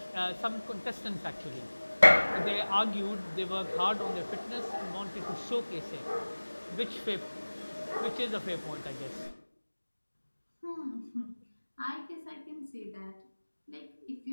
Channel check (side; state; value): both; inverted; correlation -1.00